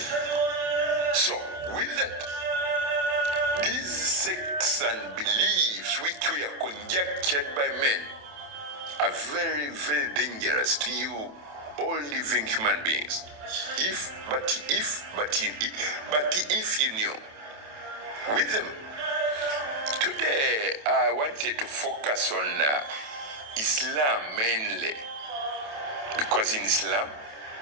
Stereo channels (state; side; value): late; left; 27 ms